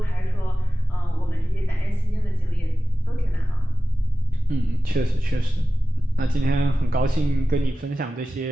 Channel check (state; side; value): normal; both; correlation 0.95